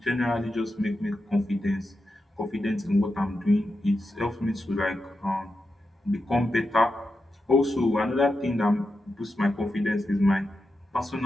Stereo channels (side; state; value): both; normal; correlation 0.89